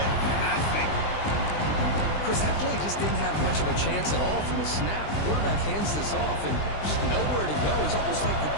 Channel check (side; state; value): right; late; 20 ms